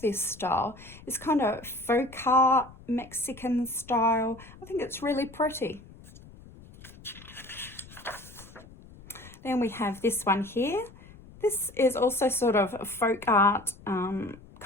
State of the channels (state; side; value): noise; left; rumble, 20 dB below the sound